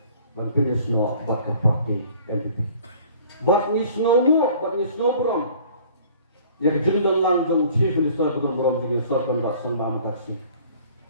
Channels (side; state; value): both; inverted; correlation -0.51